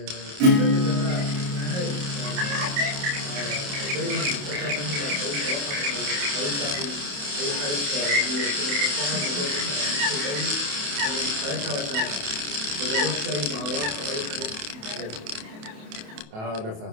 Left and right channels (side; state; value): left; late; 28 ms